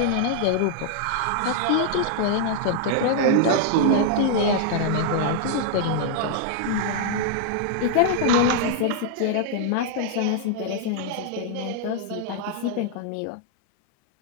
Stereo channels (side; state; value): both; different; correlation -0.01